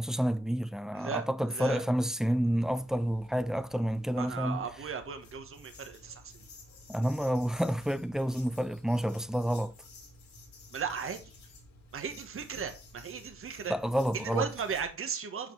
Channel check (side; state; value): both; normal; correlation 0.83